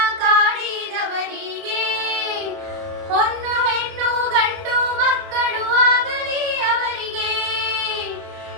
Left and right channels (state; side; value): late; left; 31 ms